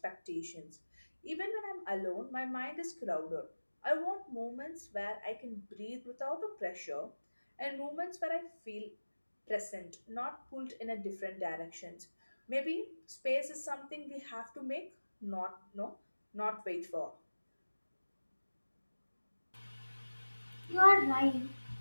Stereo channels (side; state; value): both; inverted; correlation -1.00